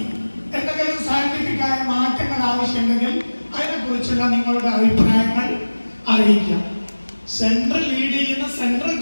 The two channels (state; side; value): inverted; both; correlation -1.00